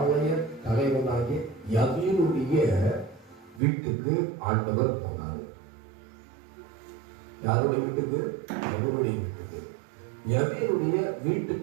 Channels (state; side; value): drops out; left; at 3.6 s